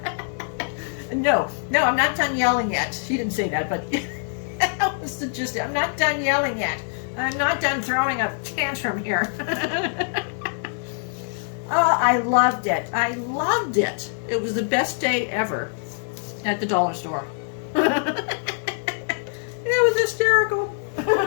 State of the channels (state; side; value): silent; right; digital silence